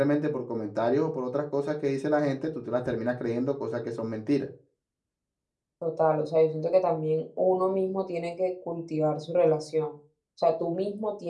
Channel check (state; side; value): identical; both; correlation 1.00